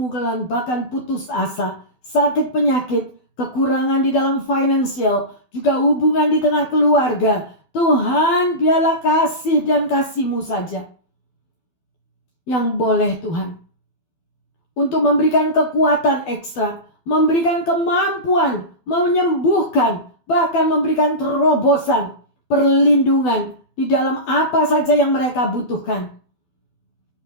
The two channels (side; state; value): right; late; 12 ms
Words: bahkan putus asa, sakit penyakit, kekurangan di dalam finansial, juga hubungan di tengah keluarga. Tuhan, biarlah kasih dan kasih-Mu saja yang boleh Tuhan. Untuk memberikan kekuatan ekstra, memberikan kemampuan, menyembuhkan, bahkan memberikan terobosan, perlindungan di dalam apa saja yang mereka butuhkan.